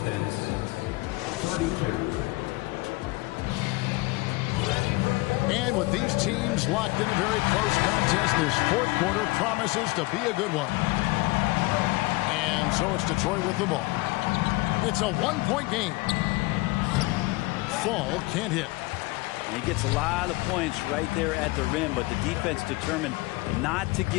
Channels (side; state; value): right; quieter; 22.6 dB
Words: Pistons 32. And with these teams locked in a very close contest, this fourth quarter promises to be a good one. And so it's Detroit with the ball. It's a one-point game. Fall can't hit. He gets a lot of points right there at the rim, but the defense determined not to